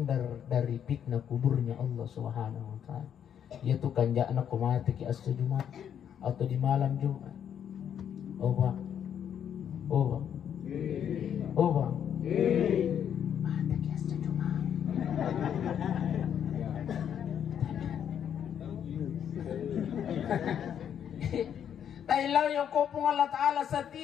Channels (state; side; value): quieter; right; 8.9 dB